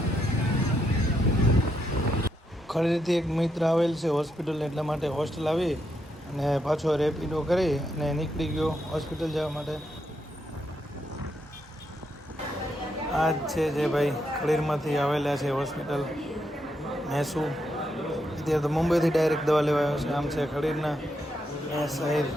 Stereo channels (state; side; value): normal; both; correlation 0.80